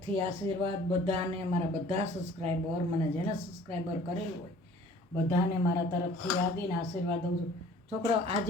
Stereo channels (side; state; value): both; normal; correlation 0.51